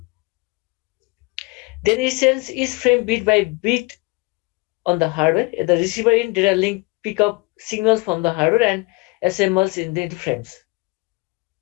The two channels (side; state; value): right; quieter; 25.8 dB